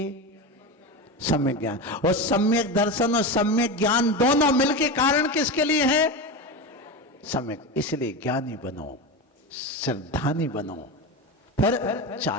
सम्यक ज्ञान। और सम्यक दर्शन और सम्यक ज्ञान दोनों मिलके कारण किसके लिए है? सम्यक। इसलिए ज्ञानी बनो, श्रद्धानी बनो, फिर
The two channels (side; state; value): both; normal; correlation 0.21